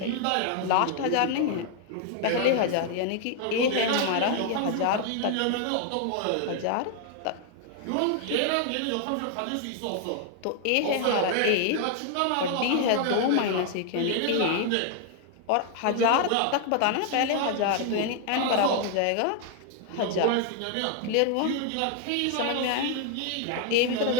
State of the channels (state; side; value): different; both; correlation 0.00